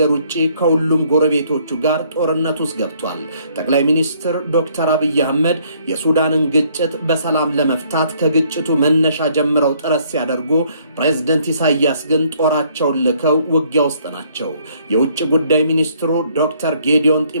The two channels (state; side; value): inverted; both; correlation -0.64